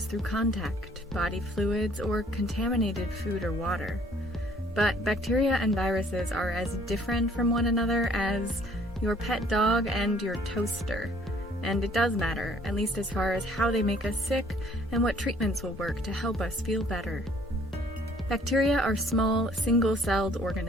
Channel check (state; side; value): normal; both; correlation 0.59